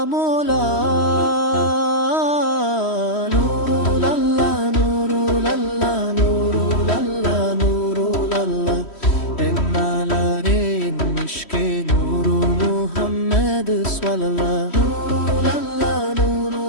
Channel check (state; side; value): late; right; 3.1 ms